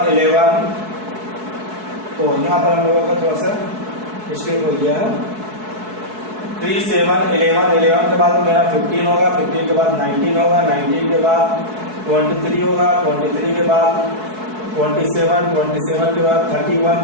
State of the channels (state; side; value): late; left; 4.6 ms